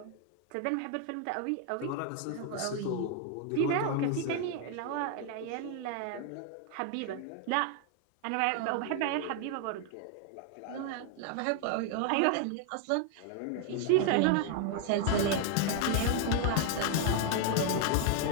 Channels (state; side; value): different; both; correlation 0.00